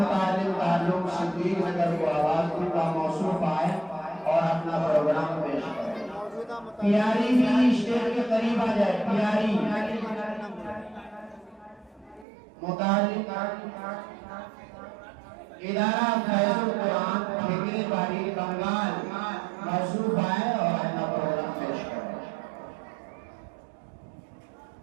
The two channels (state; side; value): drops out; left; at 12.2 s